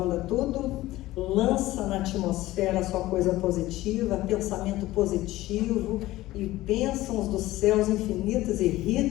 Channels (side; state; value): right; quieter; 16.9 dB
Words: tudo, lança na atmosfera só coisa positiva, pensamento positivo e bênçãos dos céus infinitas e